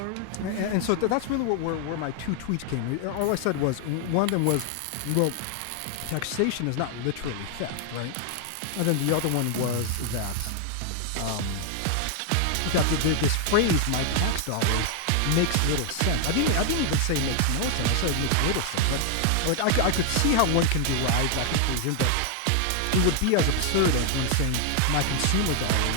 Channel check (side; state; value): both; different; correlation 0.00